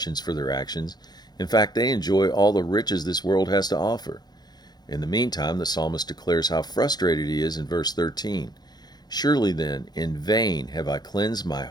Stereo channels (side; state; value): right; late; 0.20 ms